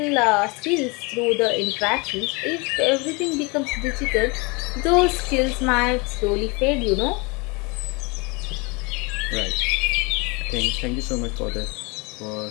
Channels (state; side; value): quieter; right; 28.3 dB